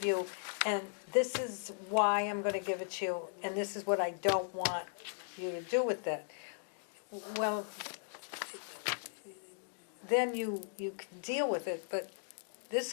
you, and this is why I'm gonna give it to you, and this is what I don't want you to do with it. Well, then you can deal with it, but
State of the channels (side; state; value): right; silent; digital silence